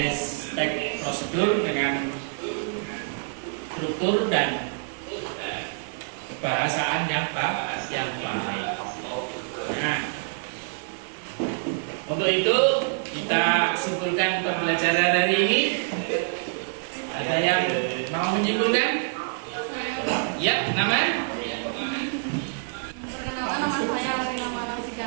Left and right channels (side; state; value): left; silent; digital silence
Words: teks prosedur dengan struktur dan bahasaan yang baik. Nah, untuk itu kita simpulkan pembelajaran hari ini. Ada yang mau menyimpulkan? Ya, nama? Perkenalkan, nama saya Rina